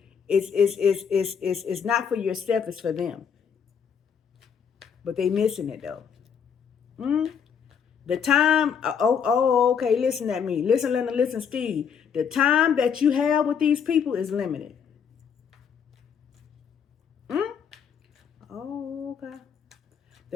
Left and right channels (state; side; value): quieter; right; 7.2 dB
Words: is not for yourself, it's for them. But they missing it though. The time, okay, listen at me. Listen, Steve. The time that you have with these people is limited. Oh, okay.